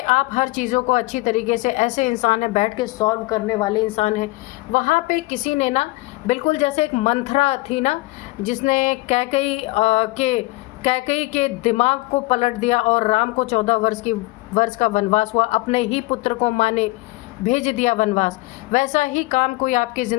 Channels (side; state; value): right; quieter; 21.7 dB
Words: हर चीज़ों को अच्छी तरीके से, ऐसे इंसान हैं बैठ के सॉल्व करने वाले इंसान हैं। वहाँ पे किसी ने ना, बिल्कुल जैसे एक मंथरा थी ना, जिसने कैकई के दिमाग को पलट दिया और राम को 14 वर्ष का वनवास हुआ, अपने ही पुत्र को माँ ने भेज दिया वनवास। वैसा ही काम कोई आपकी